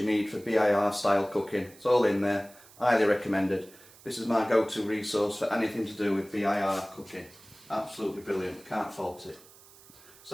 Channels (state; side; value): noise; right; hiss, 23 dB below the sound